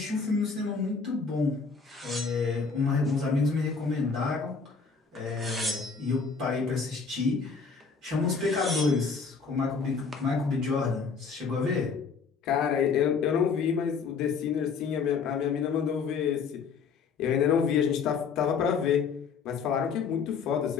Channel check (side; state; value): right; quieter; 5.4 dB